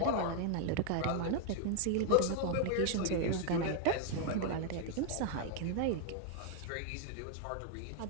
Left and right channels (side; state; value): both; different; correlation 0.01